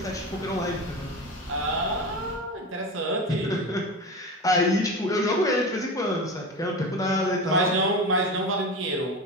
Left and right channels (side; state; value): both; normal; correlation 0.26